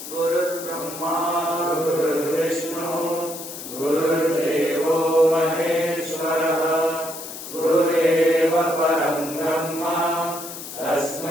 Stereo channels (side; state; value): left; noise; hiss, 11 dB below the sound